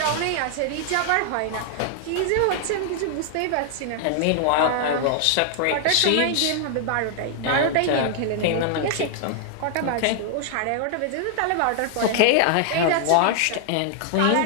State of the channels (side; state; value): both; different; correlation 0.00